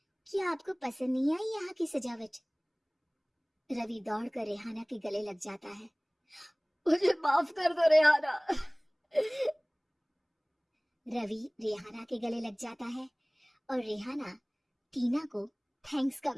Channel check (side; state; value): both; identical; correlation 1.00